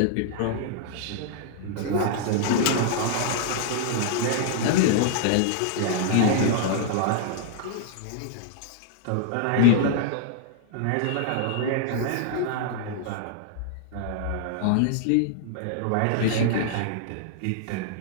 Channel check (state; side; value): different; both; correlation -0.01